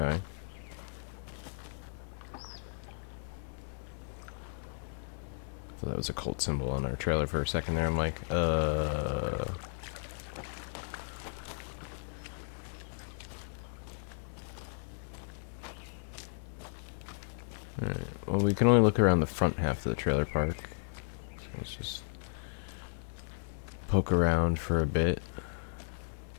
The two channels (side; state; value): right; silent; digital silence